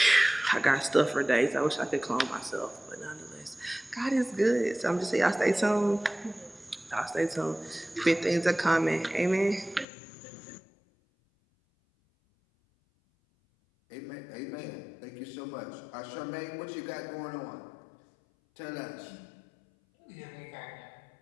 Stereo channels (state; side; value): drops out; right; at 9.9 s